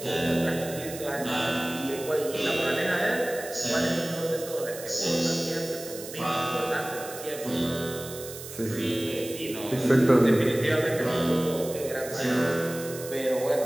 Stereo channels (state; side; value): noise; right; hiss, 12 dB below the sound